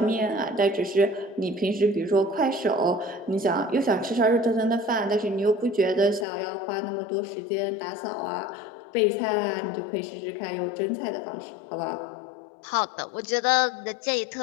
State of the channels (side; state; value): right; drops out; at 6.2 s